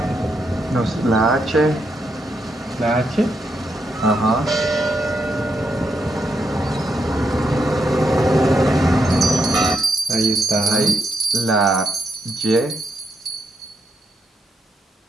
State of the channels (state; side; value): normal; both; correlation 0.80